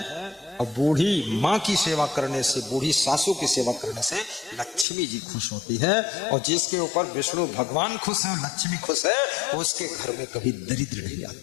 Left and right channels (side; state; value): right; drops out; at 4.9 s